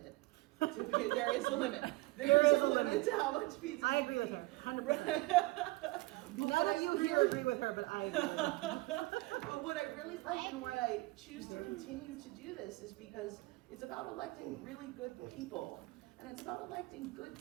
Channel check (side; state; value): left; quieter; 21.8 dB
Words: There is a limit. There is a limit to how much pizza. I agree with her, 100%. But None what of I you here really- agree with her, but I agree with her. But what I really like and why I choose to continue to do this is because it's about electing really good people. And it's about electing good